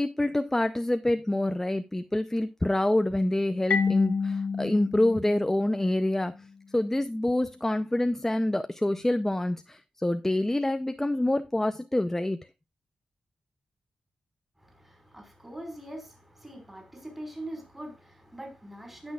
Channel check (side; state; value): both; normal; correlation 0.98